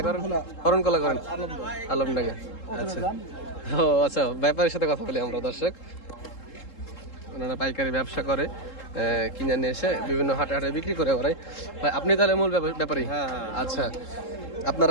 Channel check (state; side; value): late; right; 3.7 ms